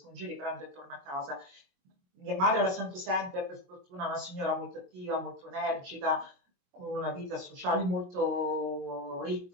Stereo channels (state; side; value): late; left; 22 ms